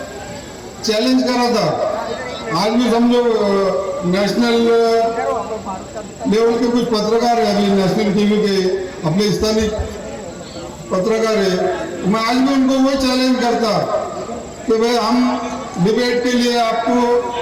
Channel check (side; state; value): both; identical; correlation 1.00